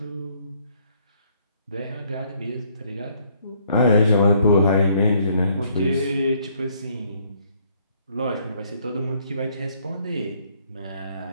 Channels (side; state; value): both; inverted; correlation -0.65